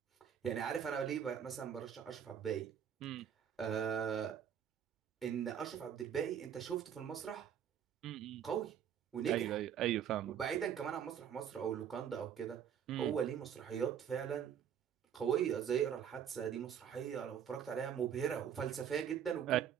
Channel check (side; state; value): left; quieter; 8.7 dB